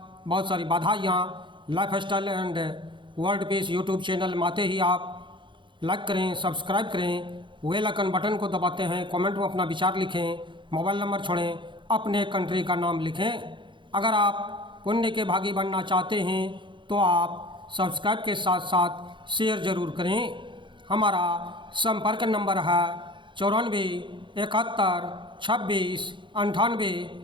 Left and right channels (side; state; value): left; late; 0.23 ms